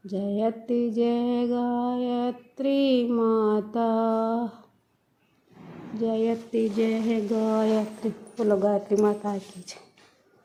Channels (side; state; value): both; identical; correlation 1.00